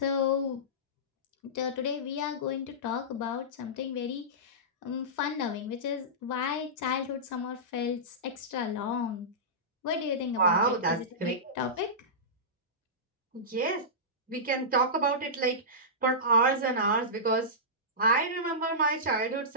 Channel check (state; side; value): normal; both; correlation -0.17